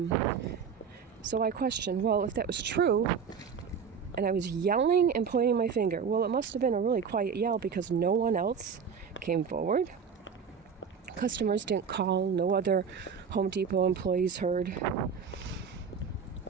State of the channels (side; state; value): left; quieter; 6.5 dB